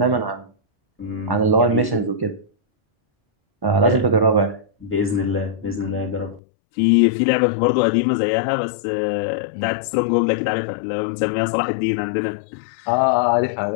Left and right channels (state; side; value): drops out; right; at 6.4 s